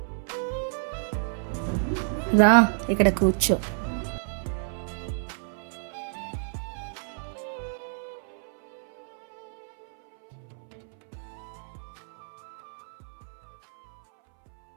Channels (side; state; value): left; silent; 59 dB below the other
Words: రా, ఇక్కడ కూర్చో.